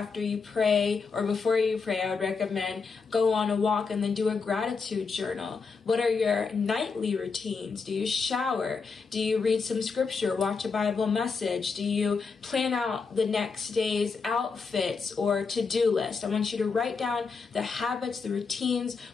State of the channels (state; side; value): quieter; right; 4.9 dB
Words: you pray, or before you pray? I would recommend go on a walk and then do a gratitude journal. What are your nightly routines? Do you shower? Do you read some scripture, watch a Bible message? Do you plan out the next day's outfits or to-do list? I want you to write down the habits, the routines,